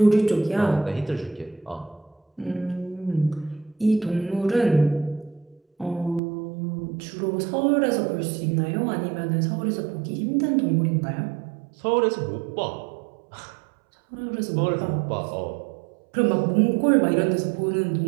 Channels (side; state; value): left; drops out; at 6.2 s